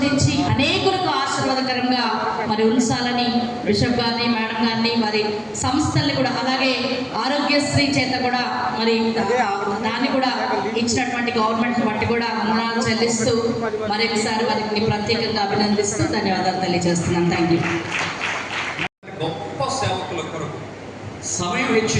అనేకులకు ఆశీర్వాదకరంగా మరి ఉంచాలని బిషప్ గారిని, మేడం గారిని, వారి సంస్థల్ని కూడా, అలాగే ఆరోగ్యశ్రీ చేత కూడా మరి దాన్ని కూడా ఇచ్చినటువంటి గవర్నమెంట్ బట్టి కూడా వందనాలు చెల్లిస్తూ మరొకసారి వారికి ప్రత్యేకంగా అభినందిస్తూ ధన్యవాదాలు తెలియజేస్తున్నాను. Thank you. గొప్ప సేవకుల కొరకు సమయం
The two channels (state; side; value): identical; both; correlation 1.00